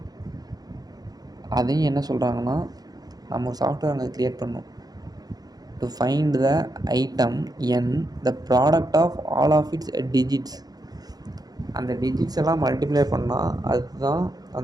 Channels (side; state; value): left; late; 0.19 ms